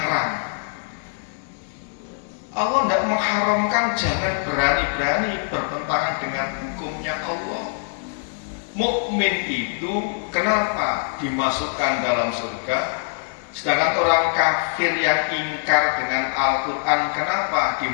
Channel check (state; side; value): silent; right; digital silence